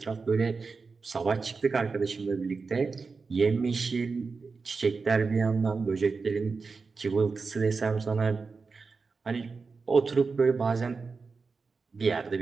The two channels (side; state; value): left; quieter; 4.6 dB